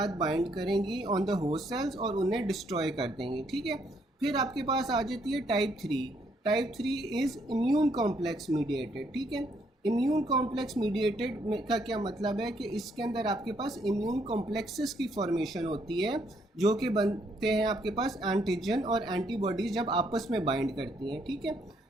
बाइंड करेंगी ऑन द होस्ट सेल्स और उन्हें डिस्ट्रॉय कर देंगी। ठीक है, फिर आपके पास आ जाती है type 3। Type 3 is immune complex mediated. ठीक है, इम्यून कॉम्प्लेक्स मीडिएटेड का क्या मतलब है कि इसके अंदर आपके पास इम्यून कॉम्प्लेक्सेस की फॉर्मेशन होती है जो कि बनते हैं आपके पास एंटीजन और एंटीबॉडीज जब आपस में बाइंड करती हैं। ठीक है,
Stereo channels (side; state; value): both; normal; correlation 0.71